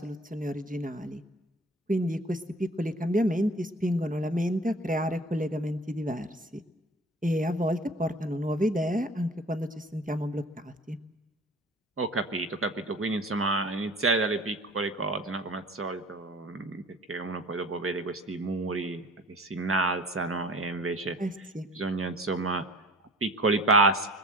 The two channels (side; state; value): both; normal; correlation 0.46